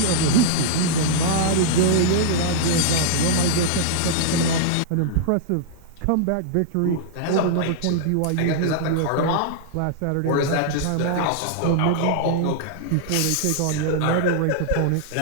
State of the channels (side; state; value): both; different; correlation -0.01